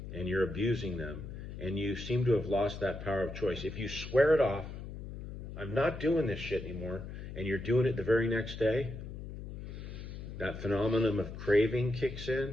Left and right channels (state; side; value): noise; left; hum, 9 dB below the sound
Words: and you're abusing them, and you seem to have lost that power of choice, if you swear it off, I'm not doing this shit anymore, and you're doing it the very next day, that phenomenon of craving kicks